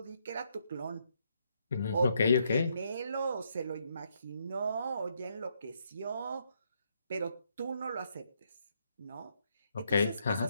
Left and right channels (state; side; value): inverted; both; correlation -0.75